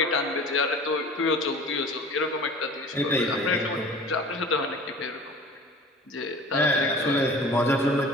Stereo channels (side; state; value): both; normal; correlation 0.43